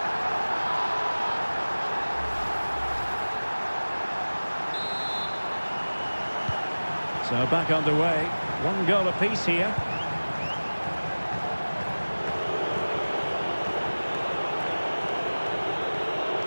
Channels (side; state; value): both; inverted; correlation -1.00